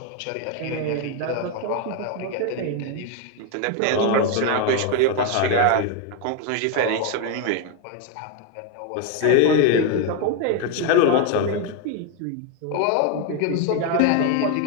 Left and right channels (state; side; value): different; both; correlation 0.01